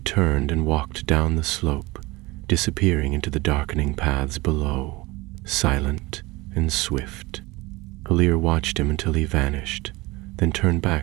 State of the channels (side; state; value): left; quieter; 22.2 dB